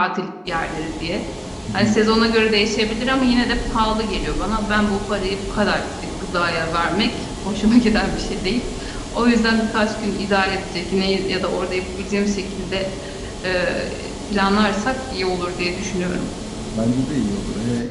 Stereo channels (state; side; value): identical; both; correlation 1.00